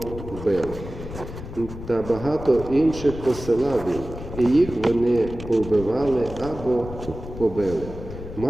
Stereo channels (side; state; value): left; noise; rumble, 11 dB below the sound